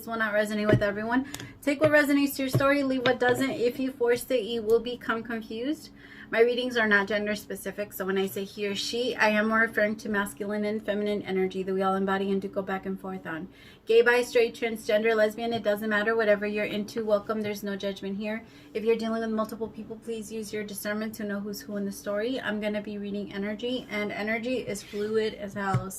will not resonate with everyone. Take what resonates to your story, leave what doesn't. If you force it, you will become confused. My readings are not gender specific, so when I say he or she, I am referring to masculine and feminine energy that we all embody and do go back and forth on. Gay, bi, straight, transgender, lesbian, it doesn't matter. Whatever you're into, welcome. There's no judgment here. If you're dealing with multiple people, please use your discernment to know who's who in the story. I'm going to be reading energy, and energy is fluid as hell.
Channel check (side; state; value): both; identical; correlation 1.00